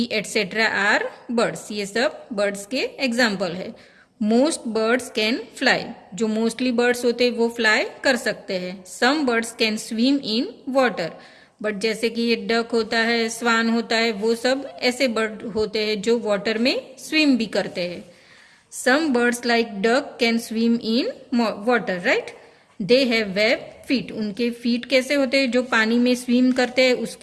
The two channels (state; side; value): identical; both; correlation 1.00